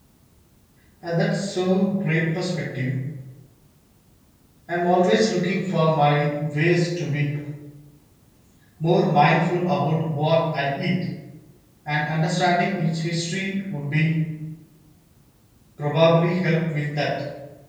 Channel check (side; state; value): both; identical; correlation 1.00